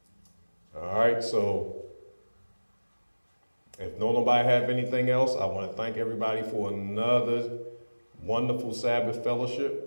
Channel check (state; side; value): inverted; both; correlation -1.00